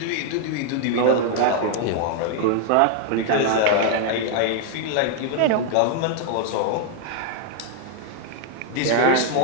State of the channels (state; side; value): different; both; correlation 0.00